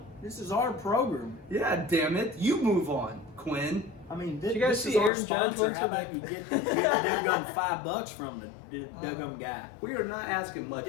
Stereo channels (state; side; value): drops out; right; at 5.1 s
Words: This is our program. Yeah, damn it. You move on, Quinn. I mean, Did you guys this see is our Aaron Judge sponsor. went How to about the- you get the $5 from the Dugum guy? We are not asking much